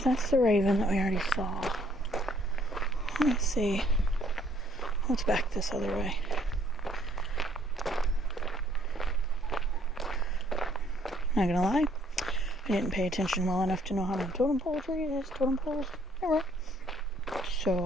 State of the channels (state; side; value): normal; both; correlation 0.64